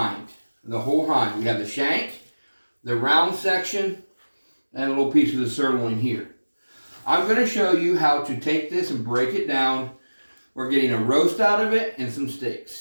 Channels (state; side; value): inverted; both; correlation -1.00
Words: the whole hind. We have the shank, the round section, and a little piece of the sirloin here. I'm going to show you how to take this and break it down. We're getting a roast out of it and some